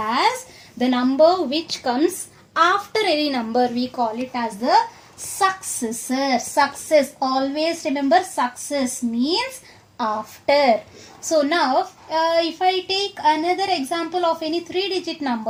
the number which comes after any number. We call it as the successor. Success, always remember, success means after. So now if I take another example of any 3-digit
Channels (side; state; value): both; identical; correlation 1.00